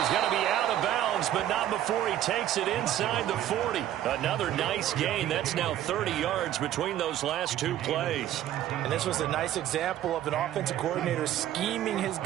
going to be out of bounds, but not before he takes it inside the 40. Another nice gain. That's now 30 yards between those last 2 plays. And this was a nice example of an offensive coordinator scheming his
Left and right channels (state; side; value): quieter; left; 12.1 dB